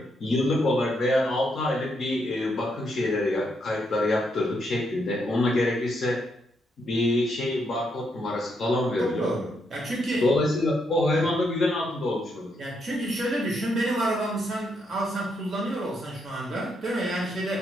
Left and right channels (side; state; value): both; normal; correlation 0.78